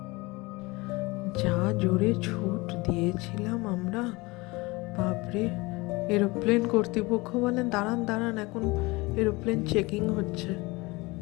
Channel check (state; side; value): quieter; right; 23.7 dB